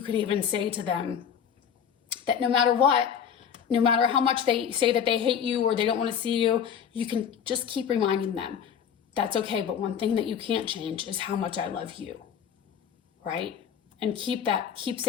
can even say to them that no matter what, no matter how much they say that they hate you or they don't want to see you, you can just keep reminding them that's okay. But one thing that you can't change is how much I love you, right? And keep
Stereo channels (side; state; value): right; quieter; 8.0 dB